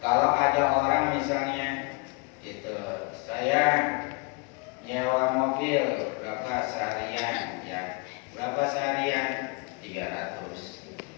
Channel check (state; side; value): quieter; right; 30.2 dB